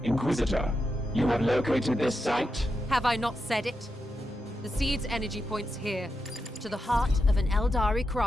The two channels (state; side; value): normal; both; correlation 0.87